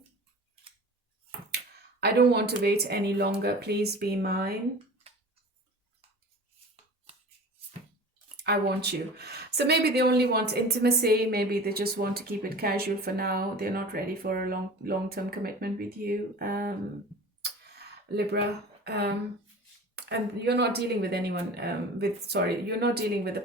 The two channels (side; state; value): both; normal; correlation 0.38